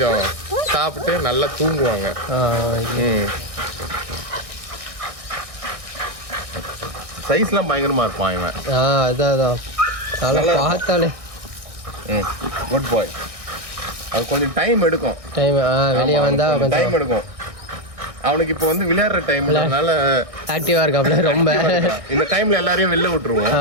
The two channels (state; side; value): late; left; 1.6 ms